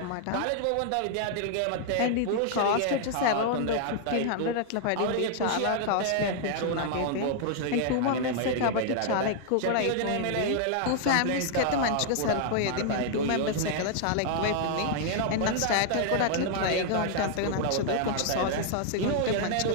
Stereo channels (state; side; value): different; both; correlation -0.01